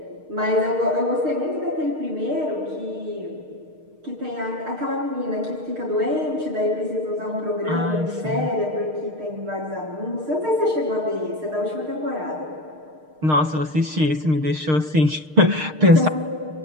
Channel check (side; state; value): left; late; 6.5 ms